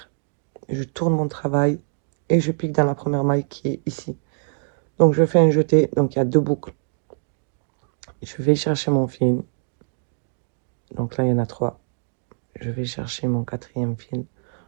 Je tourne mon travail. Et je pique dans la première maille qui est ici. Donc je fais un jeté. Donc il y a 2 boucles. Je vais chercher mon fil. Donc là, il y en a 3. Je vais chercher mon 4e fil.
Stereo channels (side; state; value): left; silent; digital silence